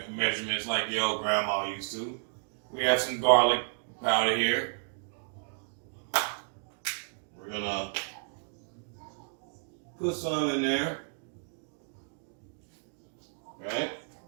like the old grandma used to. We have some garlic powder here. We're going to put some in there. Right?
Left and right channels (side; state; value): left; silent; digital silence